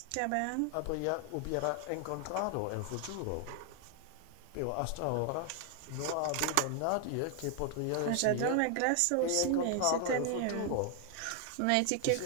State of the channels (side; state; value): both; different; correlation 0.00